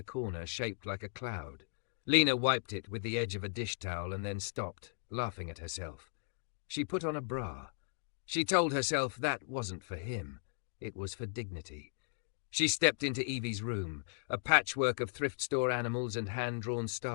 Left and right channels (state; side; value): silent; right; digital silence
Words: corner, shaped like a cloud. Lena wiped it with the edge of a dish towel and then stopped, laughing at herself. She put on a bra. She told herself that wasn't for him. It was for dignity. She stepped into Evie's room, a patchwork of thrift store animals and hand-drawn